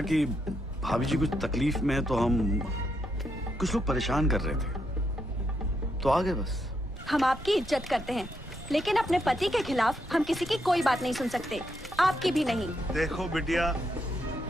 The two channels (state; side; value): normal; both; correlation 0.80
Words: कि भाभी जी कुछ तकलीफ में है, तो हम कुछ लोग परेशान कर रहे थे, तो आ गए बस। हम आपकी इज्जत करते हैं, लेकिन अपने पति के खिलाफ हम किसी की कोई बात नहीं सुन सकते, आपकी भी नहीं। देखो बिटिया,